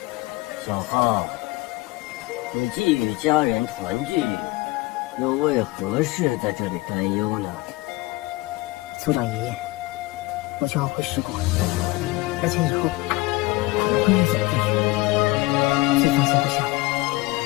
小浩，你既与家人团聚，又为何事在这里担忧呢？族长爷爷，我就要回十国，而且以后可能会越走越远。最放心不下的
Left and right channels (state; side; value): quieter; right; 21.8 dB